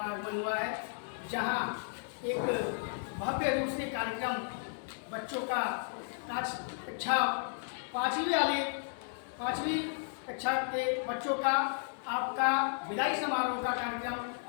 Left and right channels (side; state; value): right; silent; digital silence